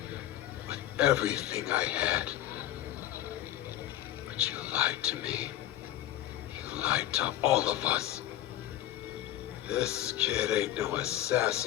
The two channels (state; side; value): quieter; right; 13.2 dB